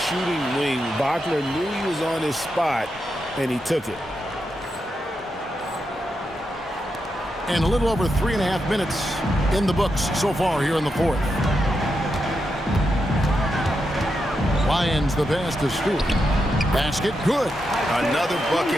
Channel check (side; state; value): both; normal; correlation 0.85